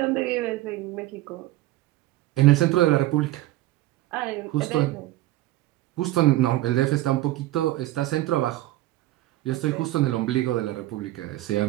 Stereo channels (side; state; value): left; quieter; 16.1 dB